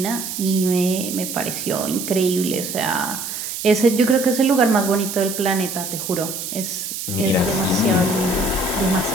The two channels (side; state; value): right; noise; hiss, 6 dB below the sound